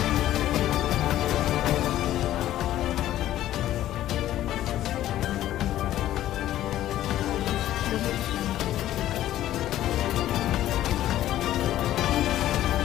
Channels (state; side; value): quieter; right; 13.3 dB